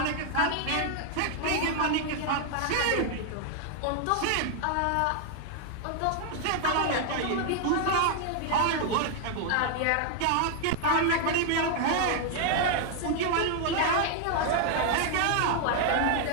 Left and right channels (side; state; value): both; different; correlation 0.00